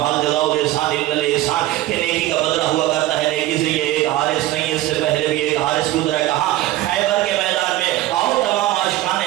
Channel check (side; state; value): left; quieter; 15.7 dB